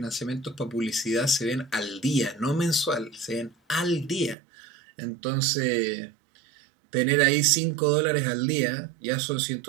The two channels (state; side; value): drops out; left; at 4.4 s